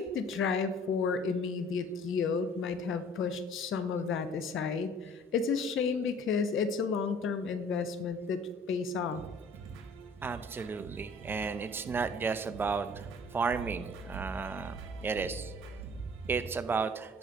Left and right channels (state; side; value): normal; both; correlation 0.51